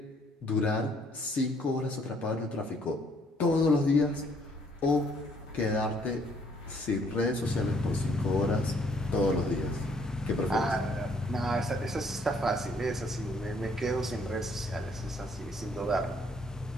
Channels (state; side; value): normal; both; correlation 0.65